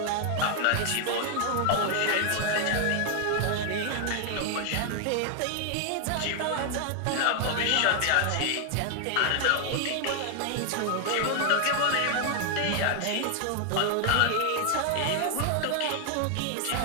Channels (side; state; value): both; different; correlation 0.00